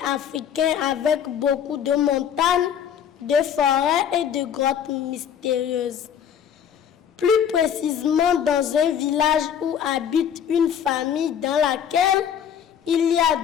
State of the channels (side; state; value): right; quieter; 8.6 dB